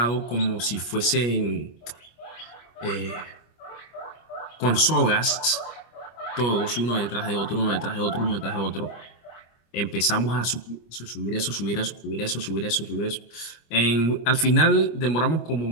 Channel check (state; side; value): late; right; 25 ms